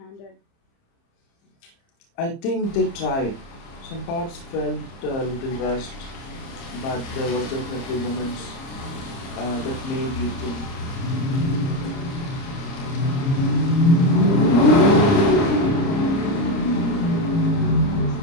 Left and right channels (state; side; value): late; right; 30 ms